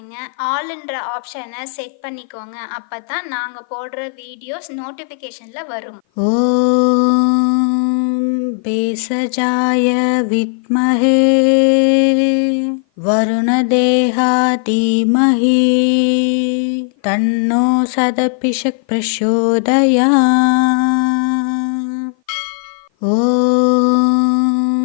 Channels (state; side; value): silent; right; 55 dB below the other